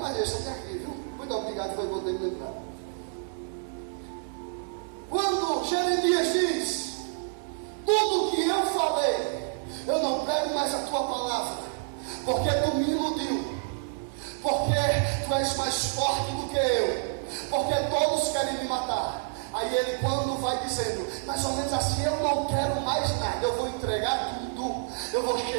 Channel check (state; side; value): silent; left; digital silence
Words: deixa até aqui, viu? Muito obrigado, foi bom ter me lembrado. Quando Jeremias diz: tudo que eu falei, eu não prego mais a tua palavra, porque tu me iludiu, porque tu és mais forte do que eu, porque todos querem me matar. Aí ele, quando vai dizendo mais ou menos assim: eu não quero mais nada, eu vou entregar tudo, eu vou